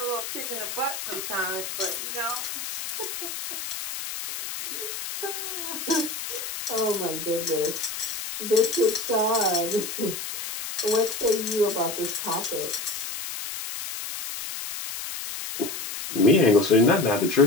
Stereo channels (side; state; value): left; noise; hiss, 6 dB below the sound